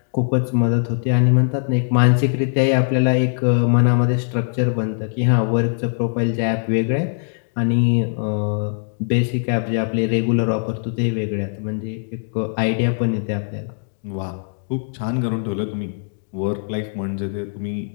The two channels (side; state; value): right; silent; digital silence